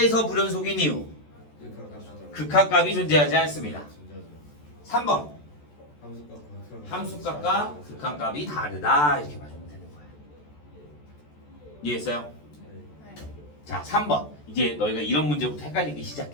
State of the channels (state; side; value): late; right; 14 ms